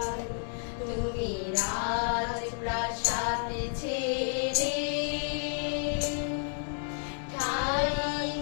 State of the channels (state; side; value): silent; right; 56 dB below the other